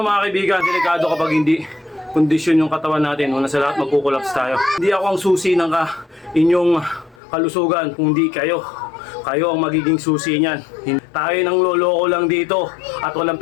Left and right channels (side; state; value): right; drops out; at 7.2 s